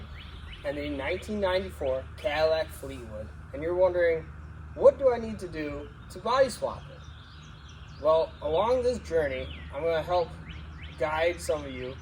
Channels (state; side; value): identical; both; correlation 1.00